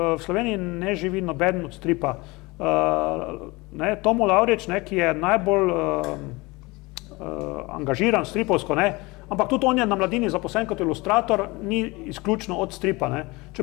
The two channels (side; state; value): right; quieter; 23.8 dB